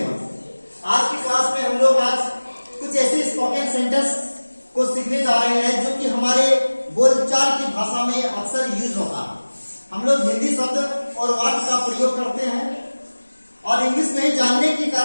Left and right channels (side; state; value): both; inverted; correlation -1.00